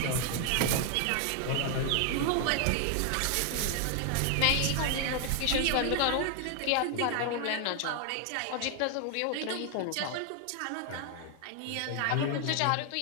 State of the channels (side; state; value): both; different; correlation 0.00